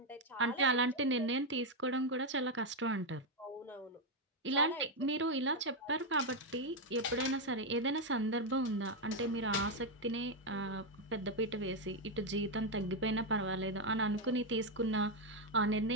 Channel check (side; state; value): both; normal; correlation 0.04